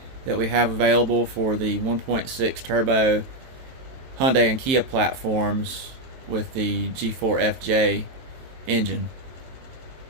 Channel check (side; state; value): left; late; 23 ms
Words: that we have available for the 1.6 turbo Hyundai and Kia platforms with the G4 FJ engine.